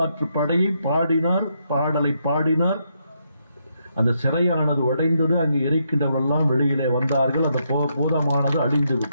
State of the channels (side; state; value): both; inverted; correlation -0.78